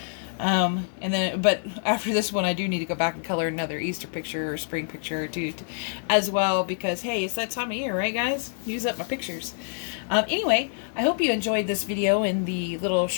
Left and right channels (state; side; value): silent; right; 61 dB below the other